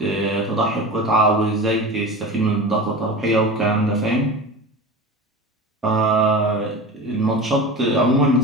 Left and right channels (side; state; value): both; normal; correlation 0.31